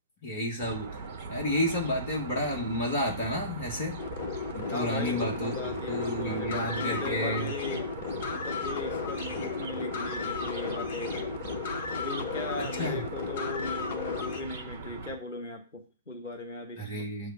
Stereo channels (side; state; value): both; inverted; correlation -0.35